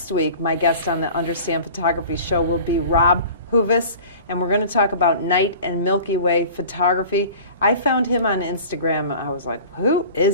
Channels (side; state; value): both; inverted; correlation -0.41